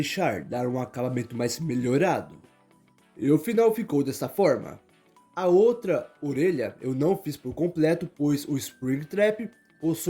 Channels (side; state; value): both; identical; correlation 1.00